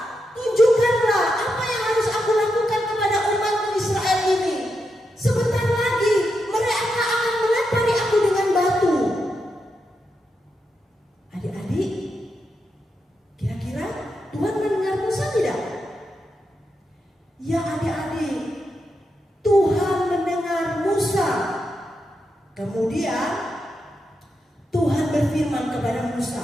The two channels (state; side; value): normal; both; correlation 0.85